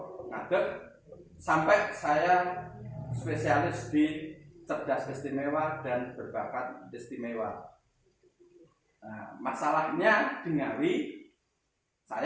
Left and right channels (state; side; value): identical; both; correlation 1.00